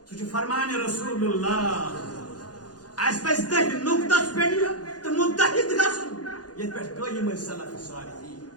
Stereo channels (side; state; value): right; late; 0.69 ms